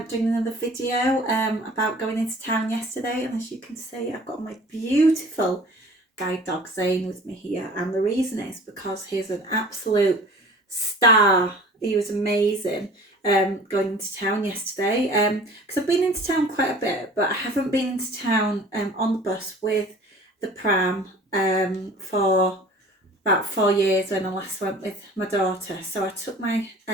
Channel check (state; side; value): normal; both; correlation 0.46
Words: doing another video about going into town yesterday, and as you can see I've got my beautiful guide dog Zane with me here, and the reason is because he's an absolute star. He was amazing going into town yesterday because I've been into town quite a bit, but I haven't been into town on the bus with the pram for about 4 years when I last went with my daughter. So I took my